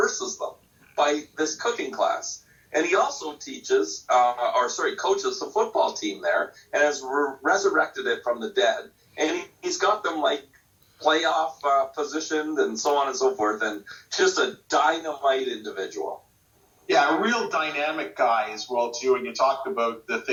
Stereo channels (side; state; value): both; identical; correlation 1.00